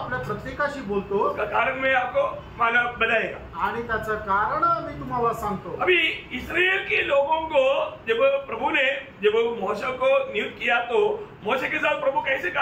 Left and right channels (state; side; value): identical; both; correlation 1.00